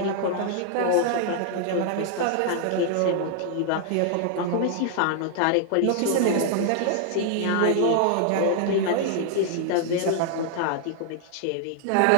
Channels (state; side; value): different; both; correlation 0.00